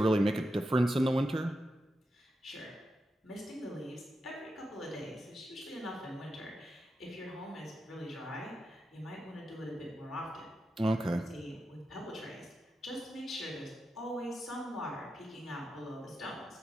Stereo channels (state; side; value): normal; both; correlation 0.88